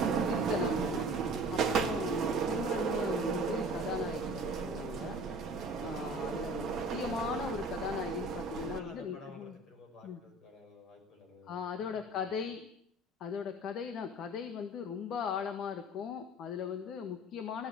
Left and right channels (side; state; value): both; normal; correlation 0.44